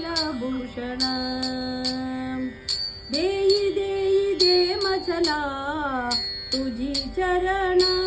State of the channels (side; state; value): both; identical; correlation 1.00